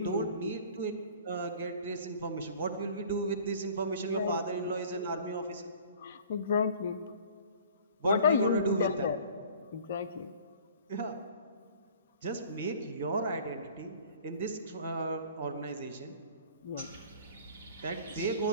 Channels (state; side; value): inverted; both; correlation -0.48